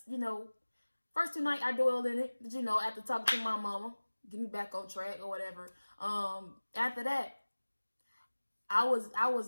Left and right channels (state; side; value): inverted; both; correlation -1.00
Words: First 2 nights I dwelled in it. But after talking to my mama, get me back on track or whatever. After that, I was